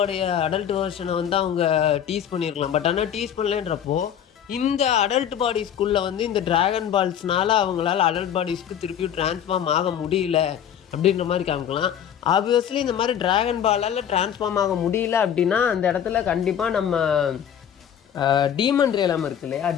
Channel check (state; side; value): quieter; right; 9.2 dB